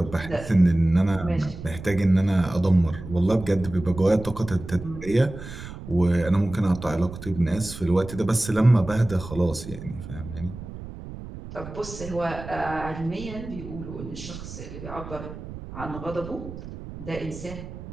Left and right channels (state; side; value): noise; right; rumble, 12 dB below the sound